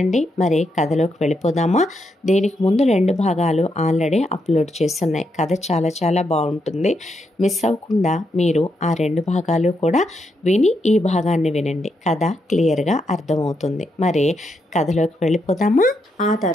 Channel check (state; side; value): normal; both; correlation 0.81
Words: మరి కథలోకి వెళ్ళిపోదామా? దీనికి ముందు 2 భాగాలు ఆల్రెడీ అప్లోడ్ చేస్తున్నాయి. కథ చాలా చాలా బాగుంటుంది. మిస్ అవ్వకుండా మీరు ఆ 2 భాగాలు కూడా విని ఈ భాగాన్ని వినండి. కథ క్లియర్గా అర్థమవుతుంది. మరి కథలోకి వెళ్ళిపోదామా? ఆ